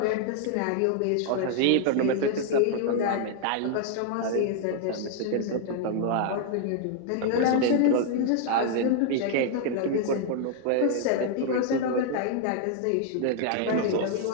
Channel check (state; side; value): different; both; correlation 0.00